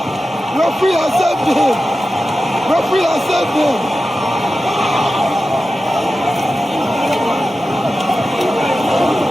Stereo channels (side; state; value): both; normal; correlation 0.93